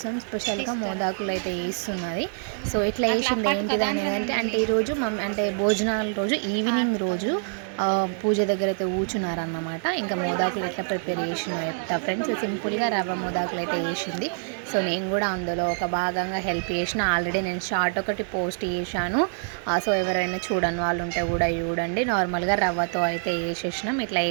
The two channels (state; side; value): silent; left; 61 dB below the other